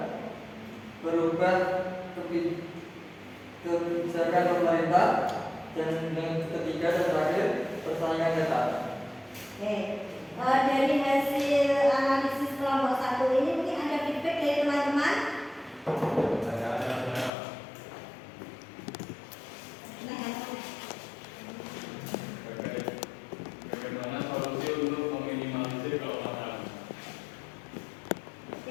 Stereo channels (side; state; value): right; drops out; at 17.3 s